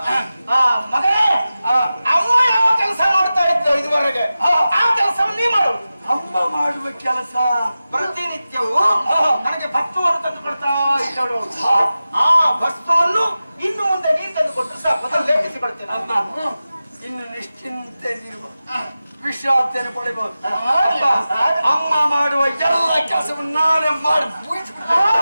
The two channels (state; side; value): inverted; both; correlation -0.94